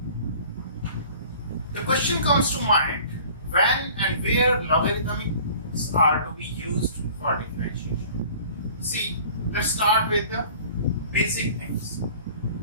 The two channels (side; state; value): both; inverted; correlation -0.48